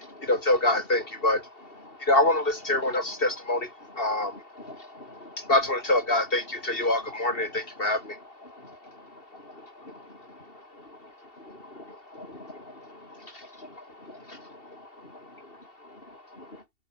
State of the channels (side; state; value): right; late; 2.7 ms